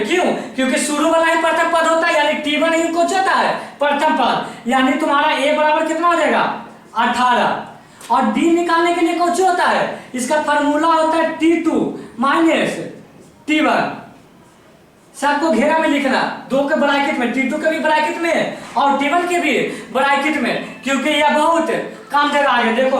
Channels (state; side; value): identical; both; correlation 1.00